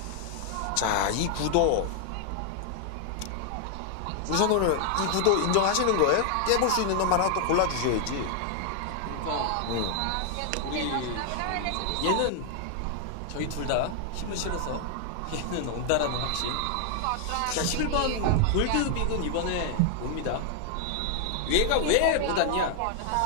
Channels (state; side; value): different; both; correlation 0.00